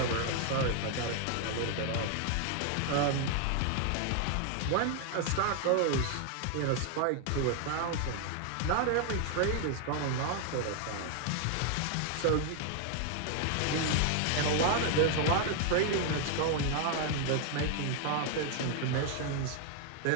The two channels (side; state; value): both; different; correlation 0.00